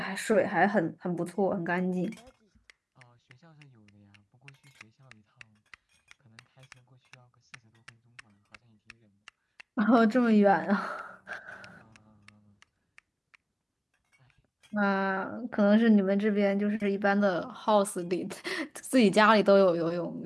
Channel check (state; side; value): identical; both; correlation 1.00